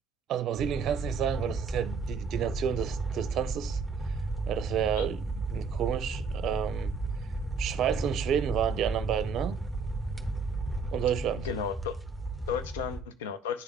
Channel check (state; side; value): quieter; left; 4.7 dB